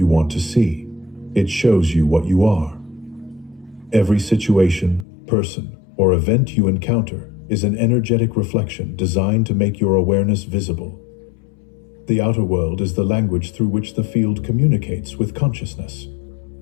want to see, it shows you what you are. Every situation, person, or event you encounter is an energetic reflection designed to make your awareness visible. The outer world is the language through which the field communicates with consciousness.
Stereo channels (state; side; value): drops out; right; at 5.1 s